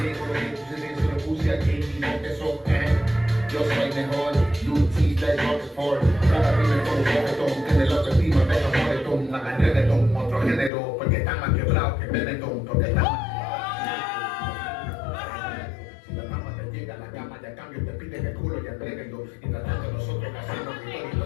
dejo, lo que sucede se lo puse aquí y no te soporte. Yo soy mejor, Lutis de Rockford. Cada primer con un reggaetón, tiene la autoestima, deja reggaetón, hagan reggaetón, otro género, porque están más quebrados que Benetton, porque están más. Si la fama te llega a la cama, ya cambio, te piden el culo y entréguenlo. Y tratando nosotros haciendo victoria y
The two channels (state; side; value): drops out; right; at 10.7 s